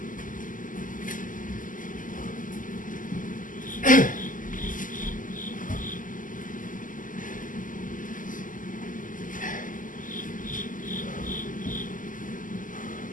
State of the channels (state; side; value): late; right; 0.38 ms